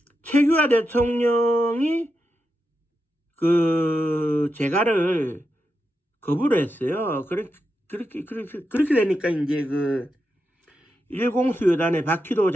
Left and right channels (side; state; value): both; normal; correlation 0.87